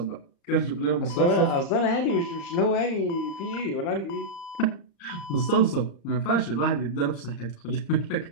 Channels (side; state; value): right; late; 35 ms